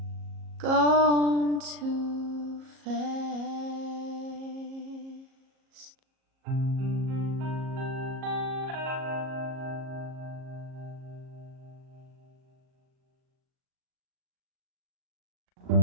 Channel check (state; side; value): late; left; 37 ms